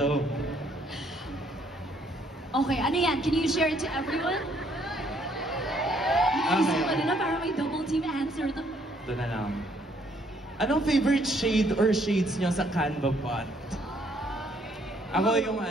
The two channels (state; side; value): normal; both; correlation 0.67